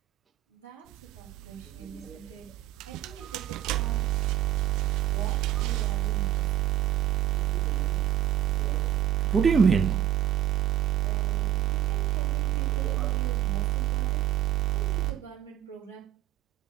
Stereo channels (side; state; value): left; quieter; 11.1 dB